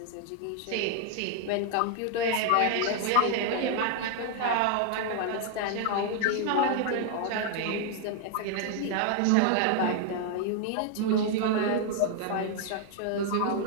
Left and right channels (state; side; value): different; both; correlation 0.00